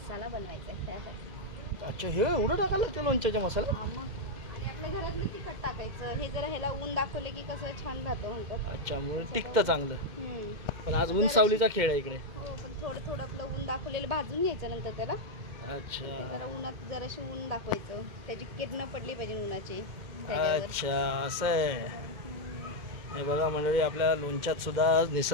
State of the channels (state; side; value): late; left; 2.1 ms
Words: बनवायचा आहे त्यासाठी. अच्छा, हे एवढं टाकायला लागतं लोणच्याचा मसाला? आणि आपल्या घरातलं तिखट टाकायचं. हे जरा ह्याला ऊन दाखवले की कसं छान राहतं म्हणतात. अच्छा, म्हणून टिकतं चांगलं. पण आज ऊन सावलीचा खेळ आहे इकडे. हो, पण थोडं आपलं ऊन दाखवलेलं भाजून घ्यायचं नंतर त्याला. अच्छा, जरा उन्हात जराशी ऊन दाखवायचं, त्याची किरणं पडली पाहिजे उन्हाची. अच्छा, असं आहे. हे बघा मंडळी, आपल्या लोणच्यात सुद्धा